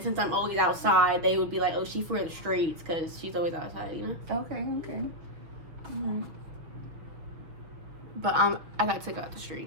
since I'm always outside, they would be like, oh, she's for the streets because she's always outside, you know? Okay. Alright. But I got took out the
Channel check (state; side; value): late; left; 6.2 ms